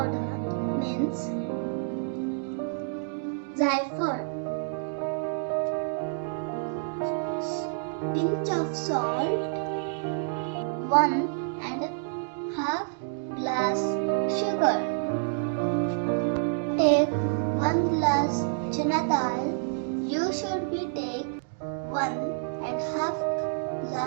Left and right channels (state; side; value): silent; left; digital silence